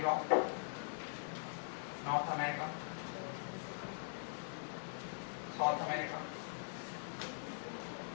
नॉर्थ अमेरिका, साउथ अमेरिका,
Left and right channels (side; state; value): right; silent; digital silence